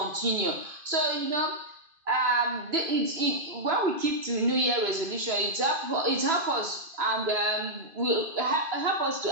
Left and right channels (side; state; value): left; late; 2.5 ms